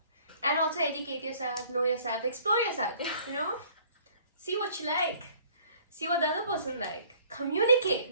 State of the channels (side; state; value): both; inverted; correlation -0.56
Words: And also educate yourself, know yourself, explore yourself. You know? See what you like. See what the other person like. Communicate.